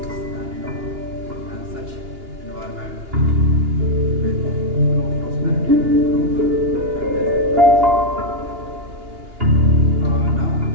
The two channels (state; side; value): late; left; 2.8 ms